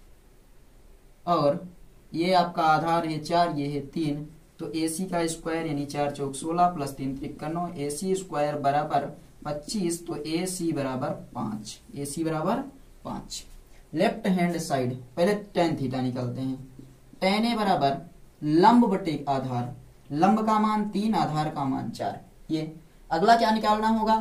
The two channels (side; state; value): both; identical; correlation 1.00